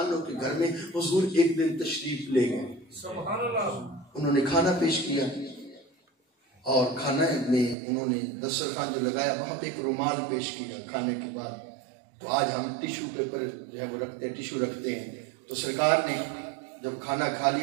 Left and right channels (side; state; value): left; drops out; at 7.8 s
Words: عنہ کے گھر میں حضور ایک دن تشریف لے گئے، انہوں نے کھانا پیش کیا، اور کھانے میں انہوں نے دسترخوان جو لگایا وہاں پہ ایک رومال پیش کیا کھانے کے بعد۔ تو آج ہم ٹیشو پیپر جو ہے وہ رکھتے ہیں، ٹیشو رکھتے ہیں، تو سرکار نے جب کھانا کھا